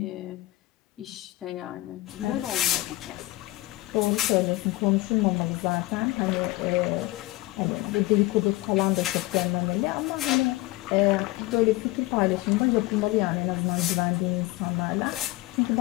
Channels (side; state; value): right; quieter; 19.3 dB